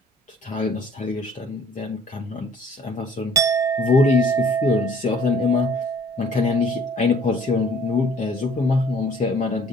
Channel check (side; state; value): both; normal; correlation 0.55